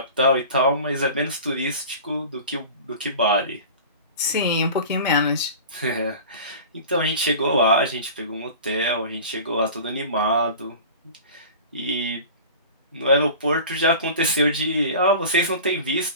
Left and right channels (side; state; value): both; inverted; correlation -0.38